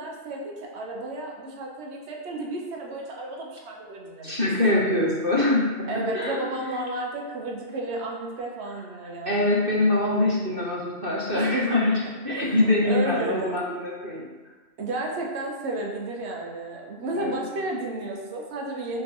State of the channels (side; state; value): left; late; 2.6 ms